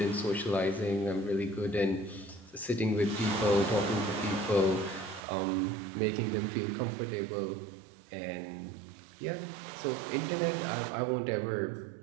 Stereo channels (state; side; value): drops out; left; at 5.2 s